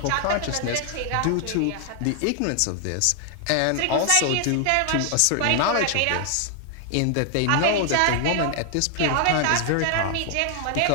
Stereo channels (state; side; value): different; both; correlation 0.00